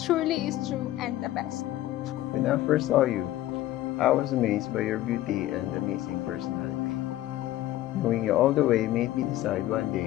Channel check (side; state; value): right; quieter; 14.7 dB